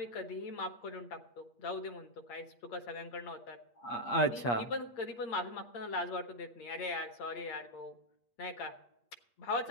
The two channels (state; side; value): late; right; 8.5 ms